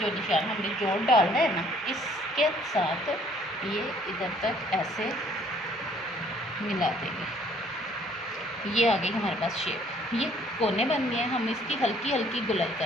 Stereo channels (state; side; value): normal; both; correlation 0.60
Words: निशान हमने जोड़ डालना है ना, इसके साथ ये इधर तक ऐसे मिला देंगे। ये आ गई हमारे पास शेप। ये कोने बन गए हैं, हम इसकी हल्की हल्की गुलाई